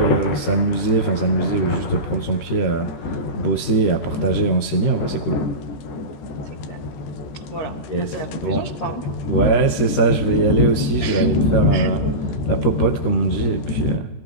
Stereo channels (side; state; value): right; late; 13 ms